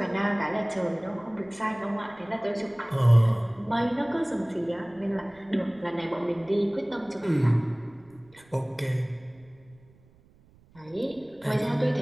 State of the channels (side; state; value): right; noise; rumble, 29 dB below the sound